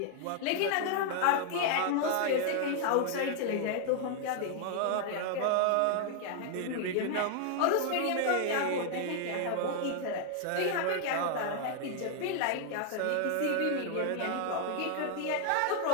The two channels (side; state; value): both; different; correlation 0.00